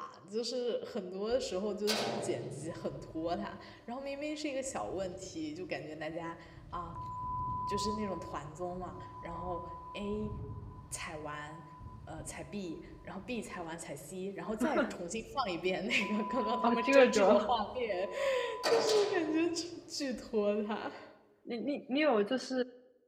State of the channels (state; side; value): identical; both; correlation 1.00